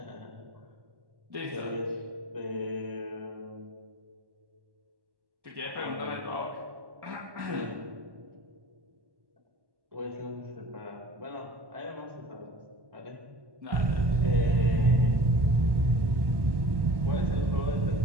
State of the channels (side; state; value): left; late; 1.1 ms